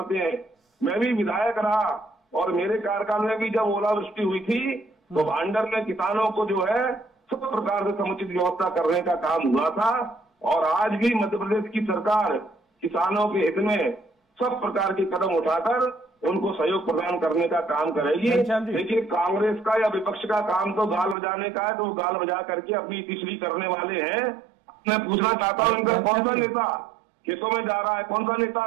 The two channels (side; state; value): left; drops out; at 21.2 s